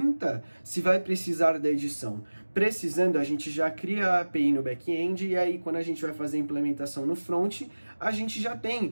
se vai precisar da edição. Precisando, a gente já cria a API no back-end e aí quando a gente vai fazer a implementação no front, a gente já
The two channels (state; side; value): inverted; both; correlation -1.00